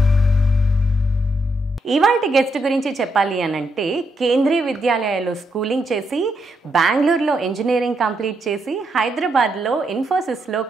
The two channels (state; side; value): normal; both; correlation 0.79